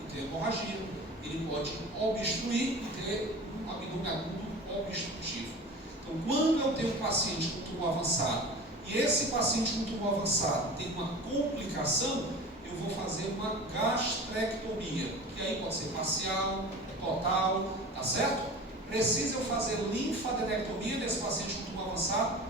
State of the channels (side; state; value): both; normal; correlation 0.36